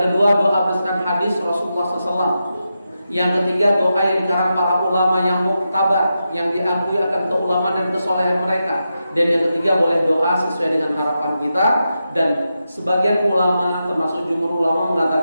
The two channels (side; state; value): both; inverted; correlation -0.88